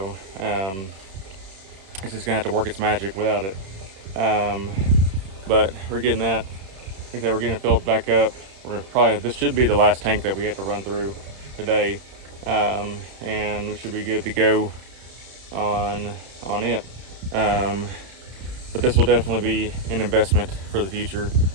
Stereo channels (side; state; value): left; late; 31 ms